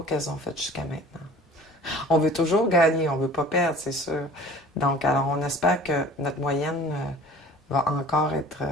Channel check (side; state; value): both; normal; correlation 0.45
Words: qu'elles ont fait jusqu'à maintenant. On veut toujours gagner, on veut pas perdre, c'est sûr. Donc, alors, on espère que notre moyenne va encore être